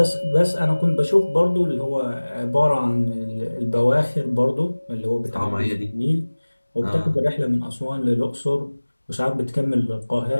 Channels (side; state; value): both; inverted; correlation -1.00